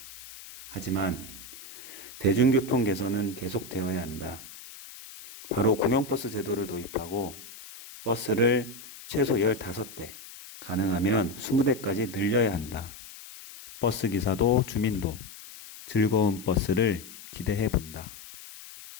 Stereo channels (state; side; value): noise; left; hiss, 16 dB below the sound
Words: 하지만 대중교통 개선은 계속되어야 한다. 바로 공영버스 제도를 도입하고 버스를 최소 15대, 가능하면 20대까지 늘려야 한다. 버스 기사도 주민도 즐거운 버스를 기대해 본다.